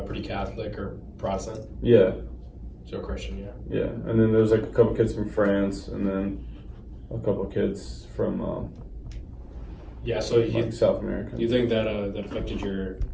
pretty Catholic or Protestant. Yeah. So Christian, yeah. Yeah, and then there's like a couple kids from France, and then a couple kids from Yeah, so like South America. you think that that affected your,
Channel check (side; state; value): both; identical; correlation 1.00